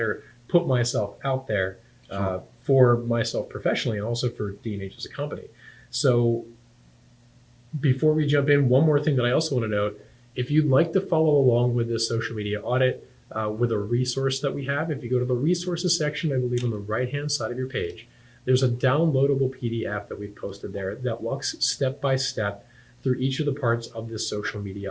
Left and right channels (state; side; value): identical; both; correlation 1.00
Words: put myself out there for myself professionally and also for D&H as a company. So before we jump in, one more thing that I also want to note, if you'd like to follow along with this social media audit with a resource that we have, if you go to the resources section, I believe on the right-hand side of your page, there's a downloadable PDF that we've posted there that walks step by step through each of the parts of this social